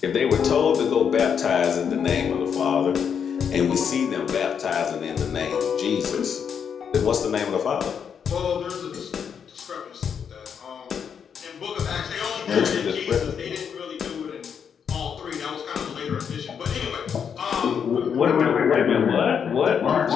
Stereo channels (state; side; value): quieter; right; 7.3 dB